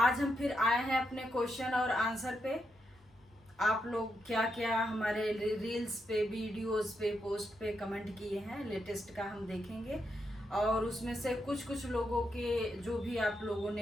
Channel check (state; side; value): normal; both; correlation 0.82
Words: हम फिर आए हैं अपने क्वेश्चन और आंसर पे। आप लोग क्या क्या हमारे रील्स पे, वीडियोस पे, पोस्ट पे कमेंट किए हैं, लेटेस्ट का हम देखेंगे। और उसमें से कुछ कुछ लोगों के जो भी आप लोगों